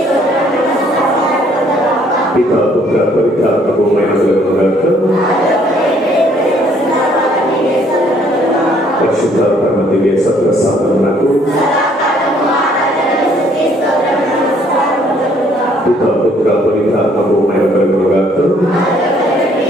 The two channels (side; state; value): both; normal; correlation 0.63